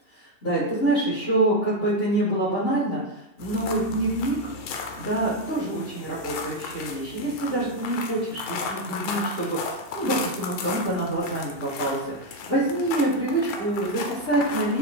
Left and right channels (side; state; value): right; late; 2.7 ms